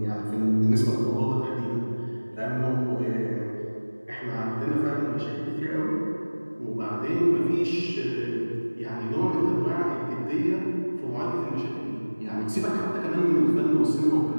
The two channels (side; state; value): both; inverted; correlation -1.00